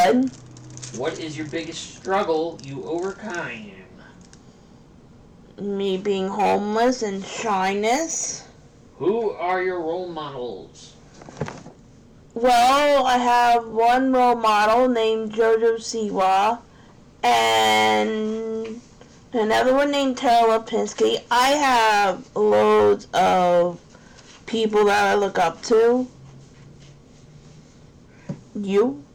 What is your biggest struggle you overcame? Me being homeless and shyness. Who are your role models? Well, I have one role model named Jojo Siwa and another one named Tara Lipinski. I have loads of people that I look up to. You?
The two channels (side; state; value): both; identical; correlation 1.00